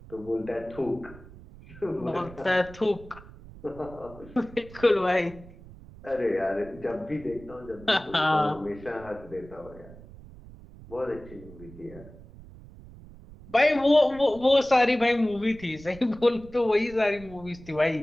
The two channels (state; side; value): noise; right; rumble, 19 dB below the sound